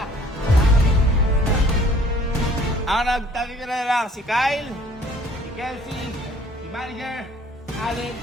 Ang nagtanggal na lang si Kyle, si Kelsey, si Manager, Allen,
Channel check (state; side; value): normal; both; correlation 0.56